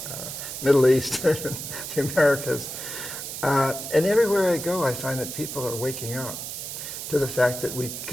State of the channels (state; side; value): noise; right; hiss, 7 dB below the sound